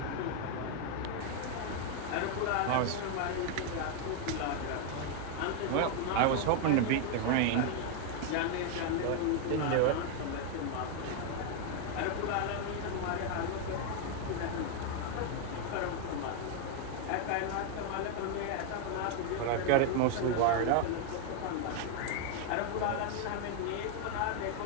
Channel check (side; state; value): both; different; correlation 0.00